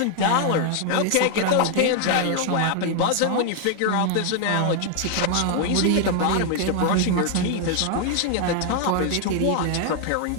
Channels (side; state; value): both; different; correlation 0.00